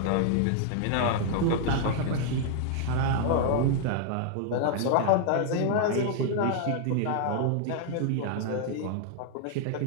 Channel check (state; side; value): different; both; correlation 0.00